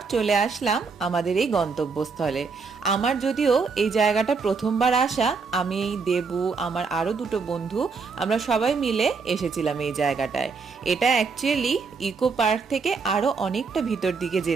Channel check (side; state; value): left; quieter; 4.9 dB